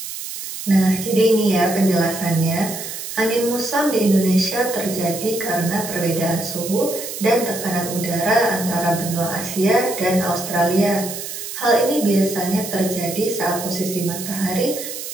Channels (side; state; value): right; noise; hiss, 8 dB below the sound